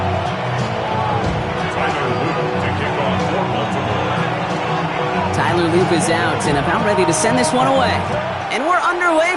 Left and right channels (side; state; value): both; identical; correlation 1.00